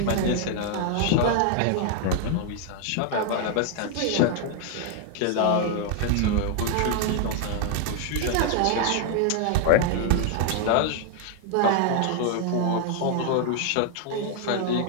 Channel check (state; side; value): different; both; correlation 0.00